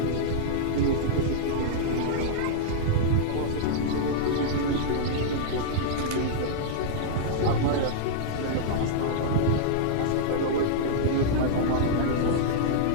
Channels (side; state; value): both; different; correlation -0.02